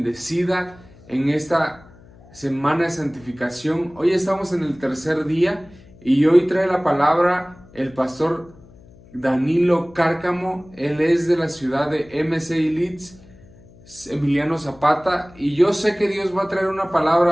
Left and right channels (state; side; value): noise; left; hum, 24 dB below the sound